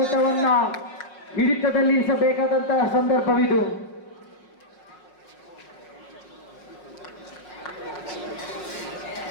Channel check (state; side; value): late; right; 5.7 ms